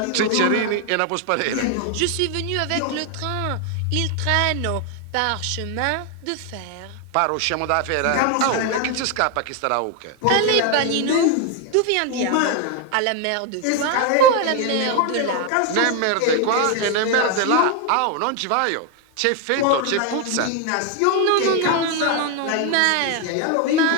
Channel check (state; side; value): different; both; correlation 0.01